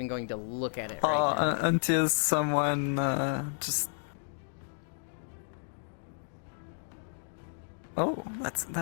going to look at it right now. Until someone just Oh, that's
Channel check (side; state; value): right; silent; digital silence